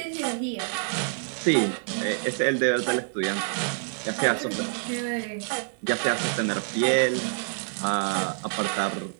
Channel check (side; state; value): left; silent; digital silence